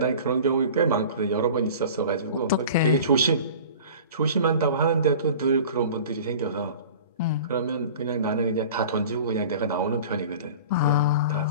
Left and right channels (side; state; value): both; inverted; correlation -0.40